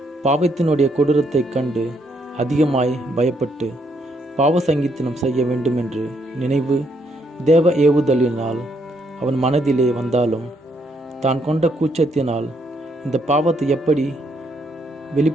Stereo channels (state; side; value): normal; both; correlation 0.73